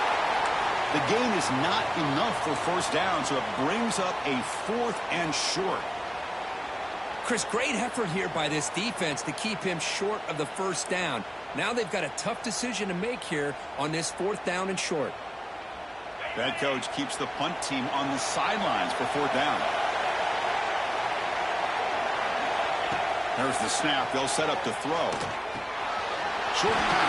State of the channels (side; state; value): both; identical; correlation 1.00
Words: The gain is not enough for 1st down, so it brings up a 4th and short. Chris, great effort here by this defense to keep him short of the 1st down. Now they've got a tough decision to make here on this 4th down and short. The head coach keeps the punt team on the sidelines for 4th down. There's the snap. They'll set up to throw. Short